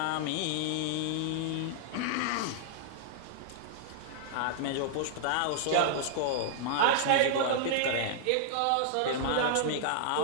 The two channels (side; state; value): both; different; correlation -0.01